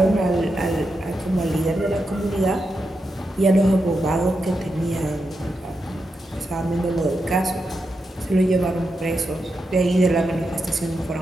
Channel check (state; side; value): normal; both; correlation 0.86